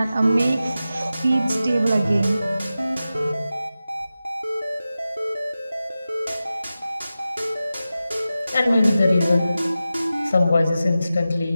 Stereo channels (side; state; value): both; inverted; correlation -0.93